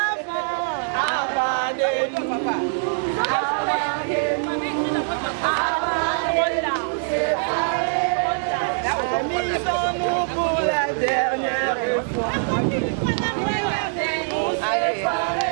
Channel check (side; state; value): left; silent; digital silence